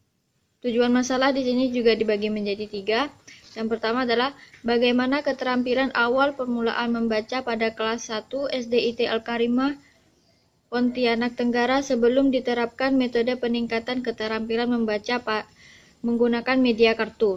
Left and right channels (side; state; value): both; identical; correlation 1.00